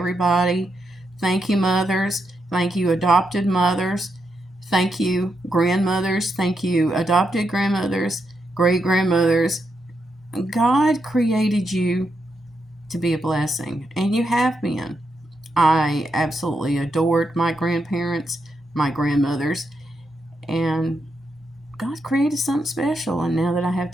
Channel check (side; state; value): both; normal; correlation 0.83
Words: Thank you, mothers. Thank you, adopted mothers. Thank you, grandmothers. Thank you, adopted grandmothers, great grandmothers. God created you to be a blessing, and you have been. I absolutely adored my grandparents, my grandmothers, and God created something special. And now that I have